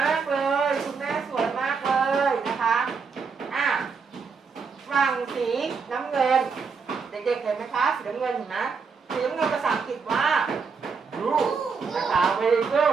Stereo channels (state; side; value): quieter; left; 5.3 dB